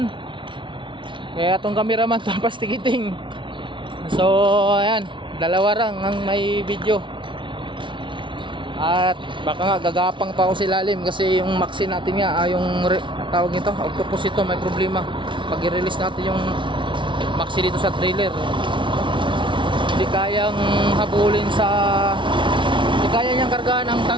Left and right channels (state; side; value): late; left; 0.24 ms